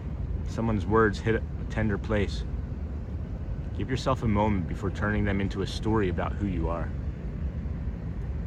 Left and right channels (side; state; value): both; identical; correlation 1.00